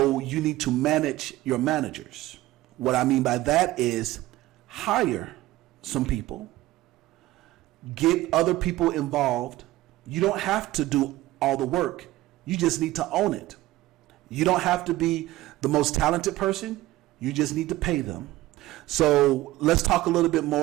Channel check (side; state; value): left; quieter; 16.9 dB